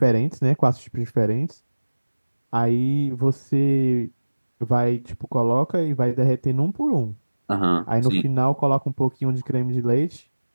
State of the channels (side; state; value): both; inverted; correlation -1.00